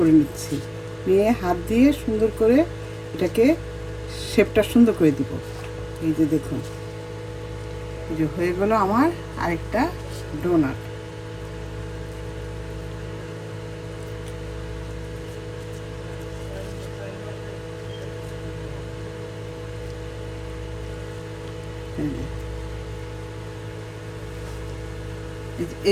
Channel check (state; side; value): identical; both; correlation 1.00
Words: নিচ্ছি, নিয়ে হাত দিয়ে সুন্দর করে এটাকে শেপটা সুন্দর করে দিব। এই যে দেখুন, এই যে হয়ে গেল আমার আরেকটা ডোনাট।